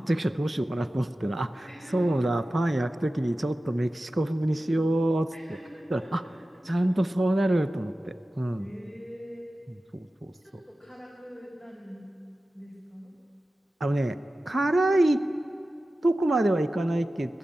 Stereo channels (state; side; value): normal; both; correlation 0.95